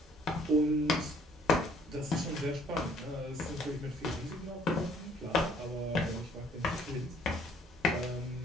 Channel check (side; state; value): both; normal; correlation 0.60